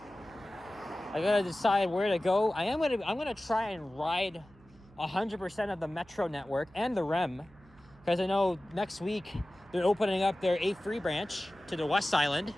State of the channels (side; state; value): right; noise; hum, 26 dB below the sound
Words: I gotta decide where to go. I'm gonna try and ride 100% of the Metro network and the REM, because I know next week they're opening up their A3 branch to the West Island.